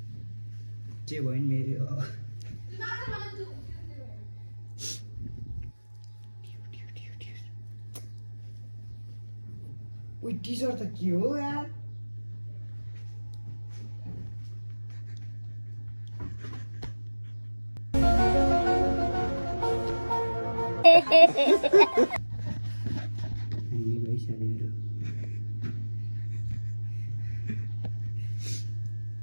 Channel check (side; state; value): both; inverted; correlation -1.00